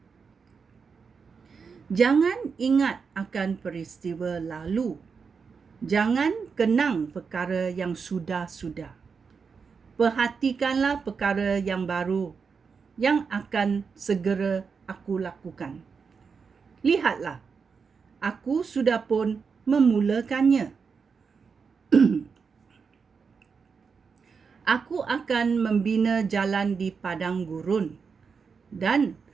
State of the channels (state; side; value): quieter; left; 5.6 dB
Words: jangan ingat akan peristiwa lalu. Jangan kenang perkara yang sudah-sudah. Perhatikanlah perkara yang baru yang akan segera aku lakukan. Lihatlah, aku sudah pun memulakannya. Aku akan membina jalan di padang gurun dan